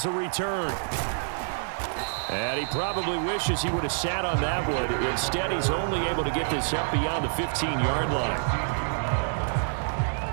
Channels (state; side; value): silent; left; digital silence